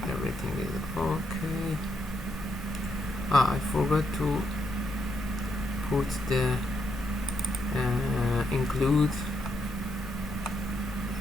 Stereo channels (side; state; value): both; normal; correlation 0.79